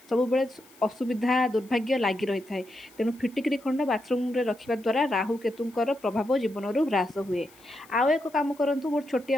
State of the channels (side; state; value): left; noise; hiss, 26 dB below the sound